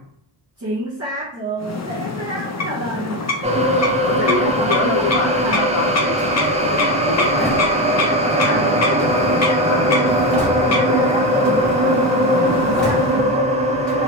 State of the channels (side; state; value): both; normal; correlation 0.16